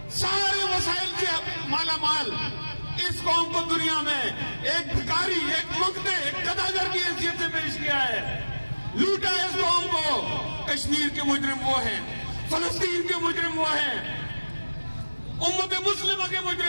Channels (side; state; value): both; inverted; correlation -1.00